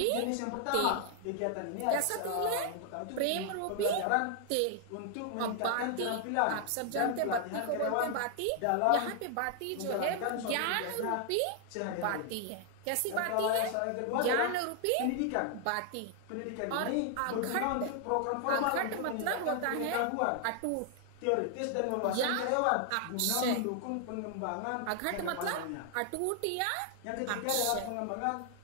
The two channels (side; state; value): both; different; correlation 0.00